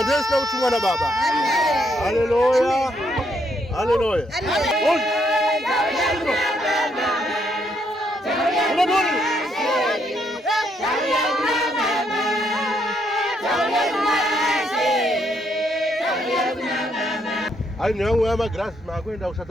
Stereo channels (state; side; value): normal; both; correlation 0.74